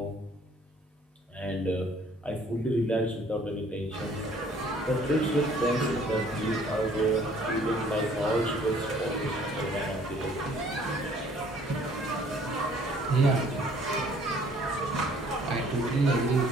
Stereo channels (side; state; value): both; normal; correlation 0.57